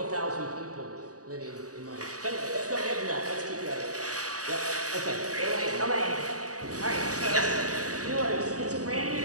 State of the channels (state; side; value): late; left; 0.67 ms